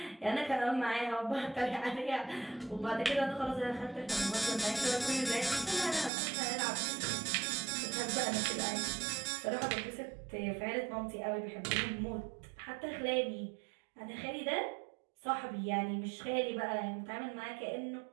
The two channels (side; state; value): left; drops out; at 6.1 s